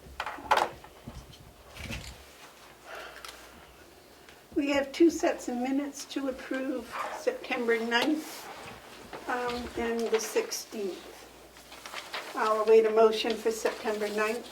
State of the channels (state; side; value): identical; both; correlation 1.00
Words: We have two sets of minutes to approve, September 9th and the 16th. I'll await a motion for September 9th.